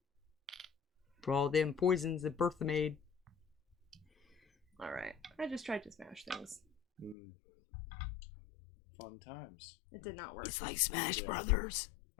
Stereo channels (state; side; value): drops out; right; at 7.2 s